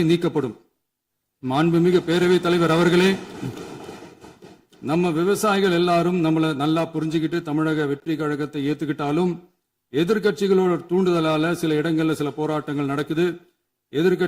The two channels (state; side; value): identical; both; correlation 1.00